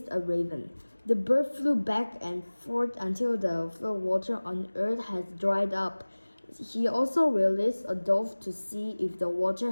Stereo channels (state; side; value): inverted; both; correlation -1.00